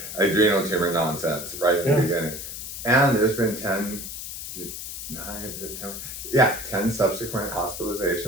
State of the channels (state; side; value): noise; left; hiss, 8 dB below the sound